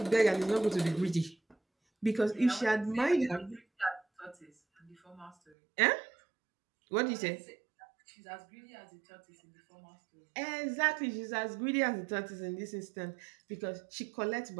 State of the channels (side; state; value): left; drops out; at 5.4 s